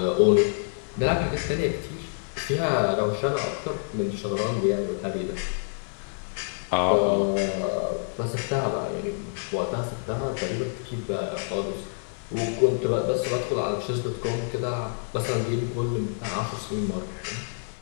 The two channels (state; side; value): silent; right; digital silence